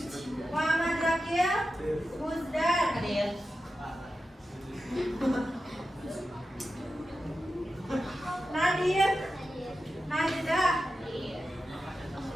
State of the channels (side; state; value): both; normal; correlation 0.91